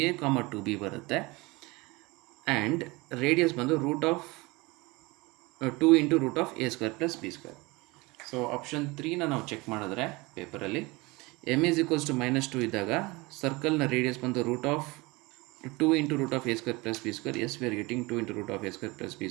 comma 2b ಬರುತ್ತೆ. ಆ್ಯಂಡ್ ರೇಡಿಯಸ್ ಬಂದು root of 2 into root of a square plus b square. So option 3ನ ನಾವು ಚೆಕ್ ಮಾಡಿದ್ರೆ ಪೇಪರಲ್ಲಿ m is equals to minus 2 ಇದ್ದಾಗ ಸರ್ಕಲ್ನ ರೇಡಿಯಸ್ ಬಂದು root of 2 into root of a square plus b square. S we are getting 2 into root of a square plus b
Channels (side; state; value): left; quieter; 23.8 dB